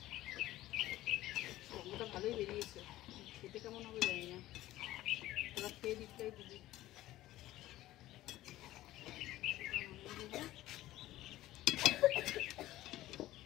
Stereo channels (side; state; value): right; quieter; 15.6 dB